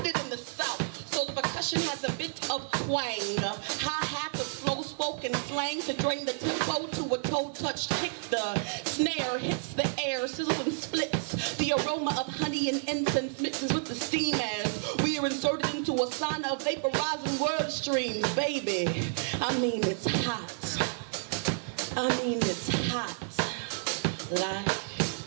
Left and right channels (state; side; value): silent; left; digital silence